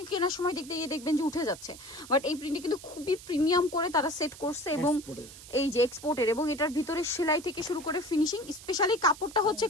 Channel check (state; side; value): noise; right; hiss, 17 dB below the sound